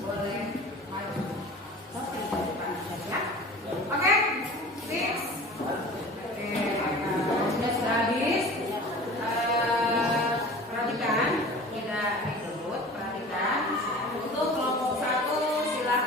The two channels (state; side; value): normal; both; correlation 0.40